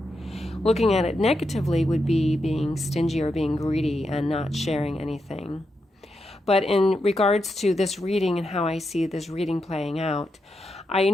Looking at it negatively would be being stingy or being greedy and not sharing anything. But in regards to this reading and how I see this reading playing out, I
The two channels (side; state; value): both; normal; correlation 0.85